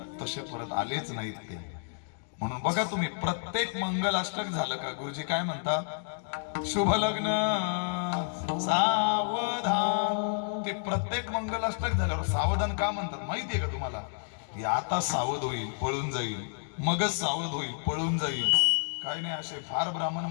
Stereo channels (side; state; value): right; silent; digital silence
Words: तसे परत आलेच नाहीत ते. म्हणून बघा तुम्ही, प्रत्येक मंगलाष्टक झालं का गुरुजी काय म्हणतात? शुभ लग्न सावधान. ते प्रत्येक मंगलाष्टक झाल्यावर सावधान का म्हणतात माहितीये का तुम्हाला? हे आता सावध होईल, पळून जाईल, मगच सावध होईल, पळून जाईल. काय नाही, असे फार ब्राह्मण